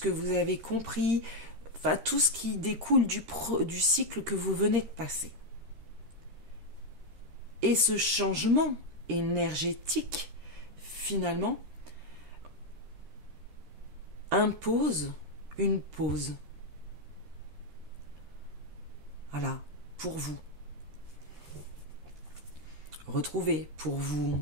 que vous avez compris, enfin tout ce qui découle du cycle que vous venez de passer. Et ce changement énergétique, finalement, impose une pause. Voilà, pour vous. Retrouver, pour vous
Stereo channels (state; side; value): late; left; 13 ms